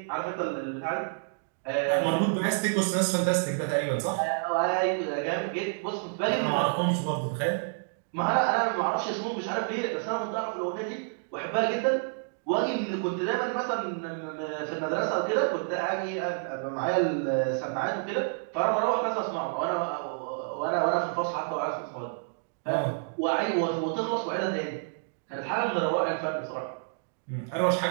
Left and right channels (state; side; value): silent; left; digital silence